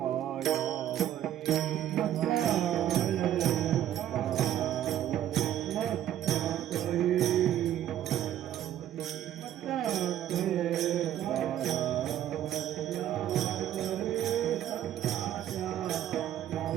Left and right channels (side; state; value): left; quieter; 11.6 dB